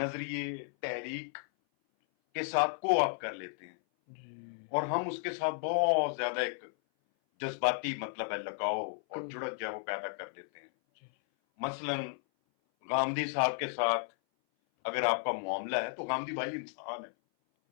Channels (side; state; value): right; silent; 55 dB below the other